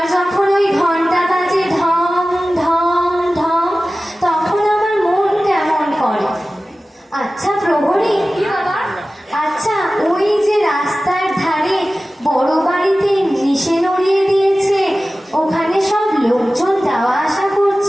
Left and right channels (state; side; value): normal; both; correlation 0.96